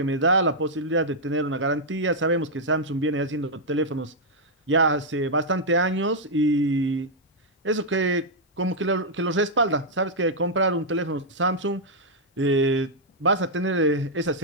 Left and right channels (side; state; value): both; normal; correlation -0.05